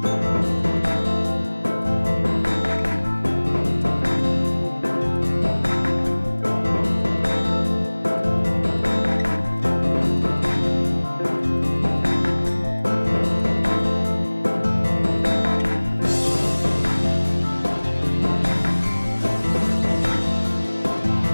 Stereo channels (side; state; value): both; inverted; correlation -1.00